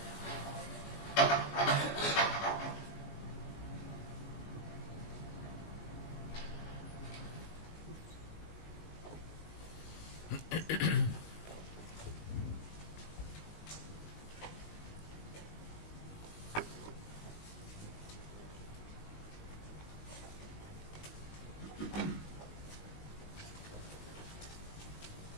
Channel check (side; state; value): right; late; 19 ms